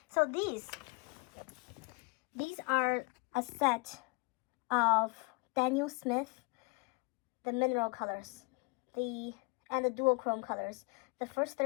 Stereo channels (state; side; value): quieter; right; 28.8 dB